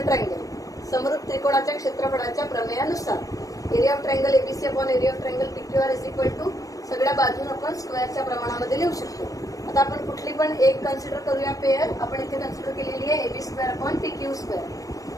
triangle. समरूप त्रिकोणाच्या क्षेत्रफळाच्या प्रमेयानुसार area of triangle ABC upon area of triangle PQR is equal to सगळ्या बाजून आपण स्क्वेअरच्या प्रमाणामध्ये लिहू शकतो. आता आपण कुठली पण एक कन्सिडर करूया पेअर. आपण इथे कन्सिडर केलेली आहे AB square upon PQ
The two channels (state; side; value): late; right; 0.16 ms